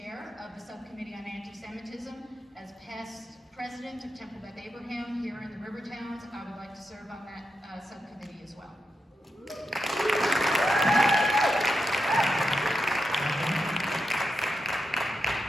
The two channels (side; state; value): both; normal; correlation 0.86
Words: of the Subcommittee on Anti-Semitism. As past president of Temple Beth Abraham here in the Rivertowns, I would like to serve on that subcommittee as well.